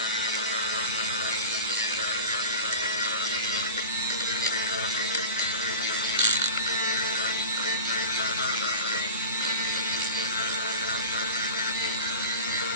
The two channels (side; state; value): both; inverted; correlation -0.35